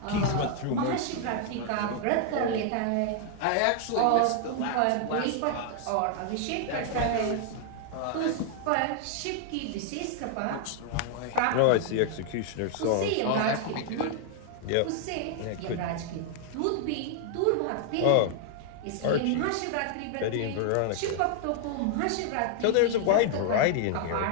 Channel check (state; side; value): different; both; correlation 0.00